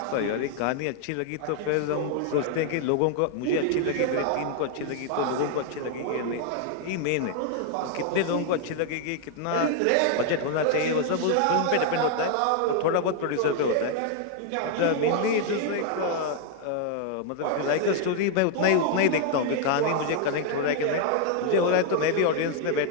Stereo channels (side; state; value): both; different; correlation 0.00